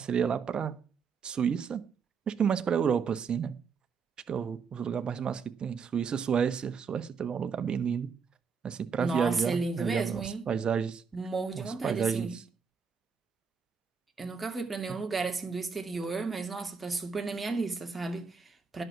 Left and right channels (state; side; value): quieter; left; 5.8 dB